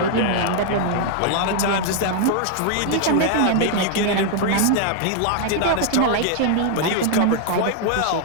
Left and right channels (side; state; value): both; different; correlation 0.00